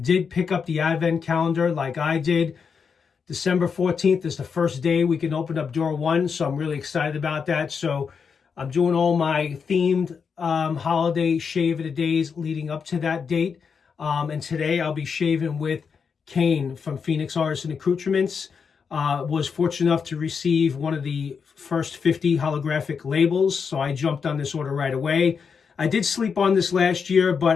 did pick up the Advent calendar like I did, December 14th is the first day we can open up door one, so I'm really excited about that. So I'm doing all my themed holiday Shave of the Days leading up to that date. And today I'll be shaving with Kane from Phoenix Artisan Accoutrements. Was fortunate enough to receive one of the first 50 holographic labels, so I jumped on this order right away. I did sleep on this last year,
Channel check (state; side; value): quieter; right; 6.0 dB